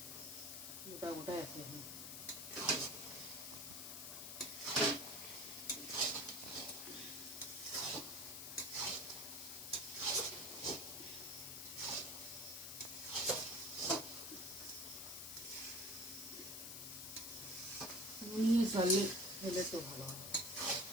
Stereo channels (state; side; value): noise; left; hiss, 6 dB below the sound